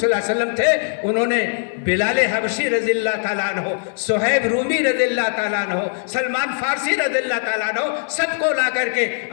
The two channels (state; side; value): silent; right; digital silence